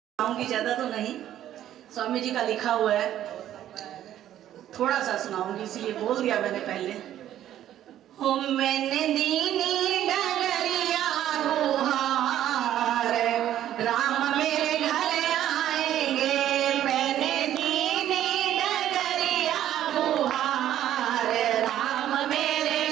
सुनाऊंगी, ज्यादा तो नहीं। स्वामी जी का लिखा हुआ है, थोड़ा सा सुनाऊंगी, इसलिए बोल दिया मैंने पहले। हो मैंने दीनी डगरिया गुहार, राम मेरे घर आएंगे। मैंने दीनी डगरिया गुहार, राम मेरे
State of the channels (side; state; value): left; quieter; 11.8 dB